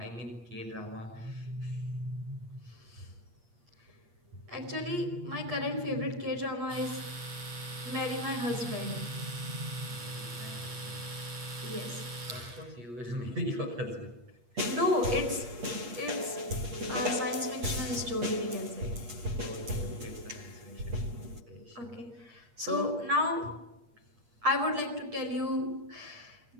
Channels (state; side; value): late; left; 8.5 ms